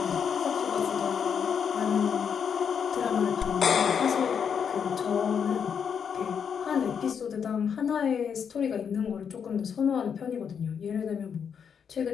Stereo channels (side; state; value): right; quieter; 7.2 dB